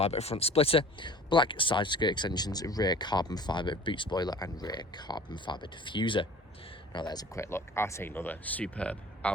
front splitter, black side skirt extensions, rear carbon fibre boot spoiler and rear carbon fibre diffuser. Now there's a quick look at another superb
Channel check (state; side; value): normal; both; correlation 0.45